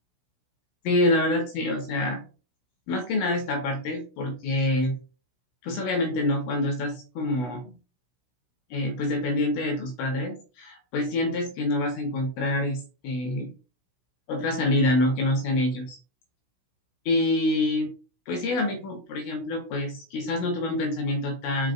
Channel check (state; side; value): late; right; 16 ms